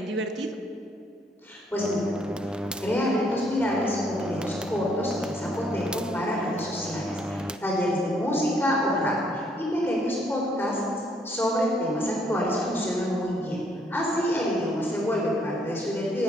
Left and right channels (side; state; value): both; normal; correlation 0.68